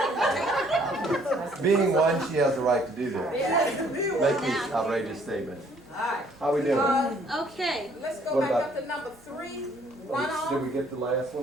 Being one, she has the right to do that. Make these outrageous statements. Alright. How we doing? Okay, Let's go What back about- up to number 3, Did runoff. we get the last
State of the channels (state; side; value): normal; both; correlation 0.62